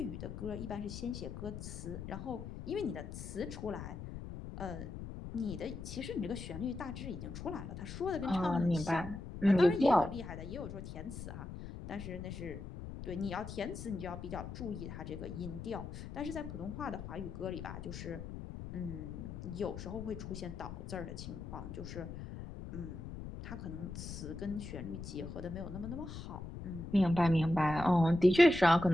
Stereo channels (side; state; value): left; noise; rumble, 9 dB below the sound